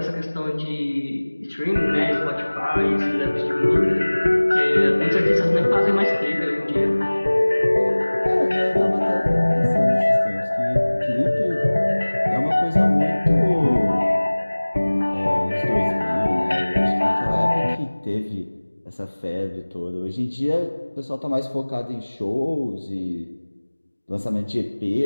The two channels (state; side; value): inverted; both; correlation -1.00